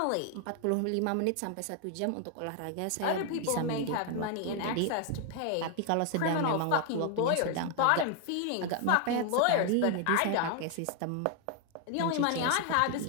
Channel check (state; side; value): different; both; correlation 0.00